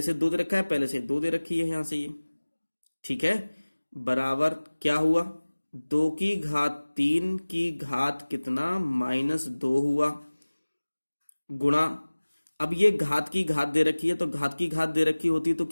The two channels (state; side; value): inverted; both; correlation -1.00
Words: से 2 दे रखा है, पहले से 2 दे रखी है यहां से ये, ठीक है। बराबर क्या हुआ, 2 की घात 3 की घात कितना, -2 हुआ, गुणा, अब ये घात की घात दे रखी है, तो घात की घात दे रखी होती है तो